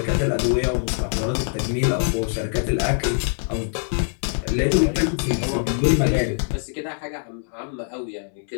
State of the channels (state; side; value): silent; right; digital silence